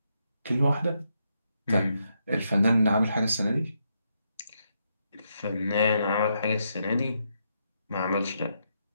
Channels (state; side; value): inverted; both; correlation -0.80